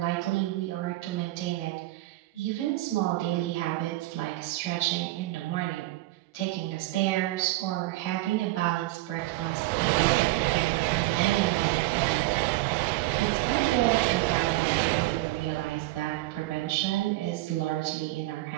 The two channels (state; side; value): quieter; left; 18.5 dB